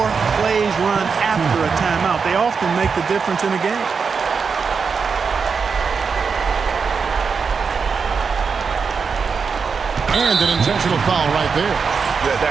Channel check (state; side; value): quieter; left; 5.5 dB